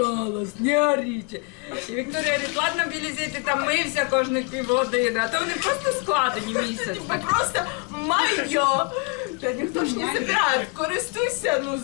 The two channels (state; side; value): quieter; right; 32.1 dB